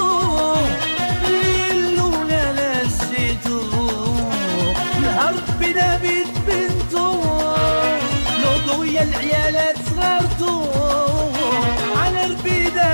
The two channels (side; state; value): both; inverted; correlation -1.00